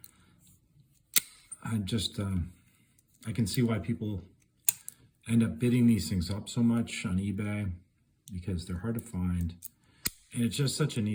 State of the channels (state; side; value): identical; both; correlation 1.00